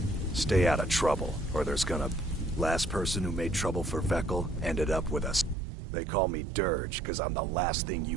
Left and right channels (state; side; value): drops out; left; at 5.6 s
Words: Stay out of trouble, or there's gonna... Last person who made trouble for Vekkel ended up with us. They call me Dirge, because I'm the last thing